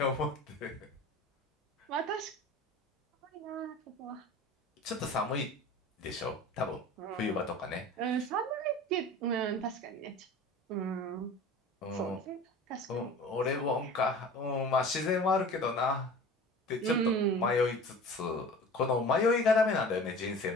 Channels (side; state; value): both; normal; correlation 0.39